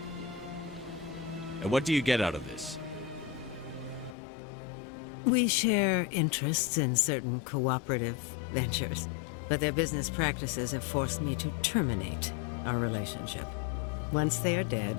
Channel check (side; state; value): right; drops out; at 4.2 s